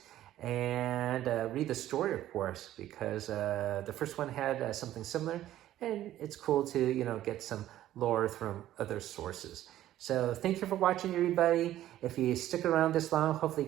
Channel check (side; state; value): left; quieter; 13.2 dB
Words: And read the story, of course, because the first one had something similar, and it's cool to, get some lore from other sources. So thank you for watching, everybody. If you stick around this long, hopefully